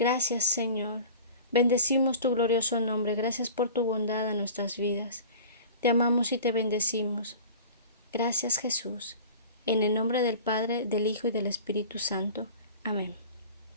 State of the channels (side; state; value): both; inverted; correlation -0.40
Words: Señor. Bendecimos tu glorioso nombre. Gracias por tu bondad en nuestras vidas. Te amamos y te bendecimos. Gracias, Jesús. En el nombre del Padre, del Hijo y del Espíritu Santo. Amén.